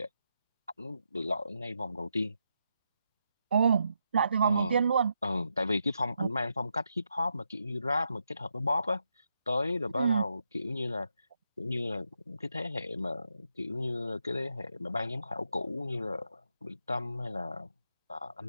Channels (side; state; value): both; inverted; correlation -0.83